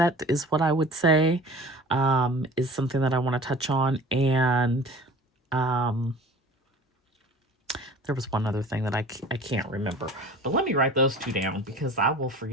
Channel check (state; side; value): normal; both; correlation 0.42